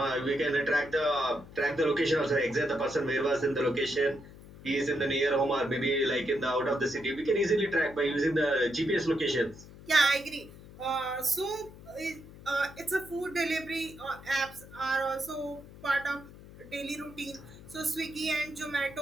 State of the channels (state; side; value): noise; left; hum, 18 dB below the sound